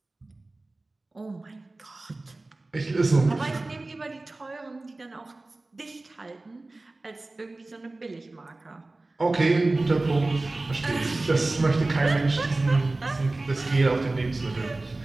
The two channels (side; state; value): left; quieter; 3.0 dB